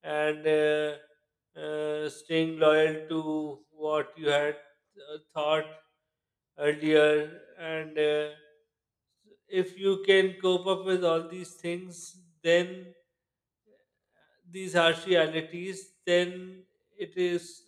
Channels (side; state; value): both; identical; correlation 1.00